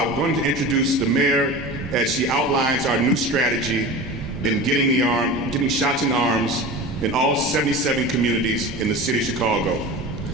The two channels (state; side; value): normal; both; correlation 0.32